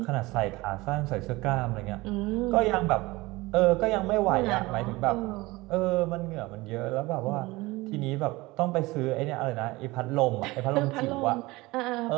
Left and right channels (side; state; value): left; quieter; 21.3 dB